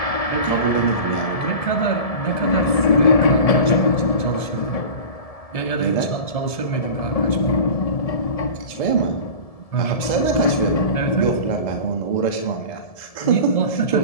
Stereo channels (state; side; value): late; right; 1.7 ms